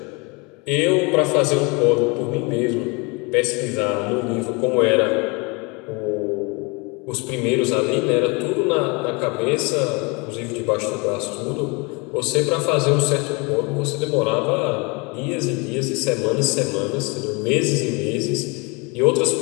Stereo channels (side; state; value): right; quieter; 29.3 dB